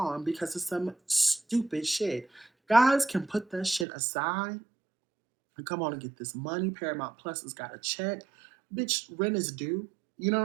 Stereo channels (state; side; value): drops out; left; at 3.9 s